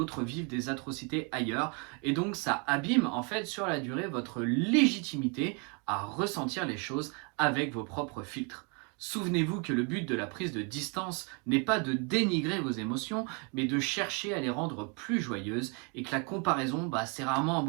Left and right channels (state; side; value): quieter; left; 34.6 dB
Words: vivent des atrocités ailleurs. Et donc ça abîme en fait sur la durée votre légitimité à ressentir les choses avec vos propres filtres. Souvenez-vous que le but de la prise de distance n'est pas de dénigrer vos émotions, mais de chercher à les rendre plus joyeuses, et que la comparaison, c'est rarement un